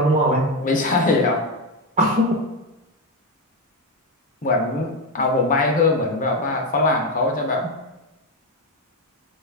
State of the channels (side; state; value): both; normal; correlation 0.09